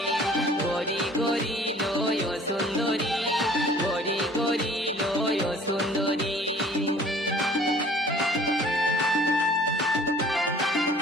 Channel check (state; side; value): normal; both; correlation 0.51